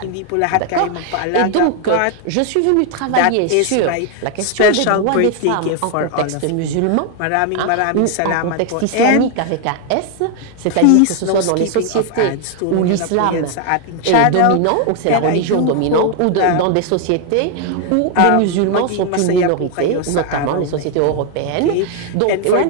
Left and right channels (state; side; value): different; both; correlation 0.00